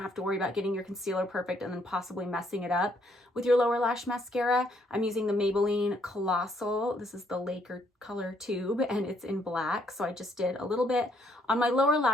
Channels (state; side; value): normal; both; correlation 0.69